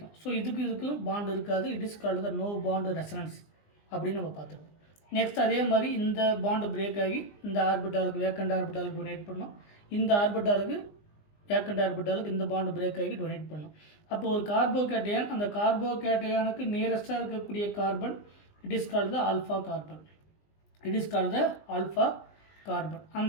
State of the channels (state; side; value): late; right; 20 ms